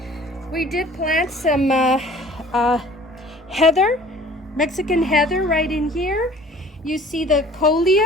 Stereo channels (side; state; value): both; normal; correlation 0.49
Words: We did plant some heather, Mexican heather right in here. You see the